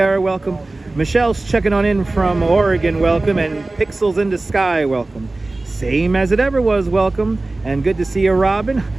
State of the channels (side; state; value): left; quieter; 3.1 dB